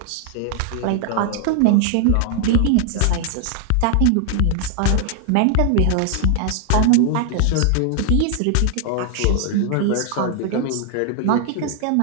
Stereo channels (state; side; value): different; both; correlation 0.00